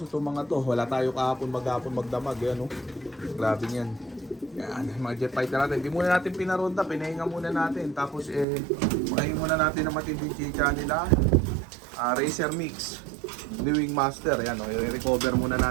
itong mga to. Wala tayo kahapon, maghapon, magdamag. Yan o, grabe yan. Yan, mga jet fighter natin. Hindi muna natin pinaronda, pinahinga muna natin. Tapos pakahin muna natin ang matinding chicha nila. Racer Mix, New Wing Master. Yan, i-recover muna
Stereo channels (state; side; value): drops out; left; at 8.5 s